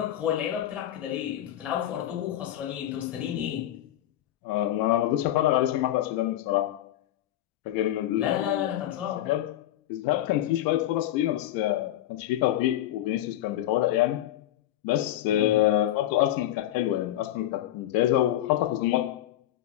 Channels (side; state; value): right; quieter; 13.0 dB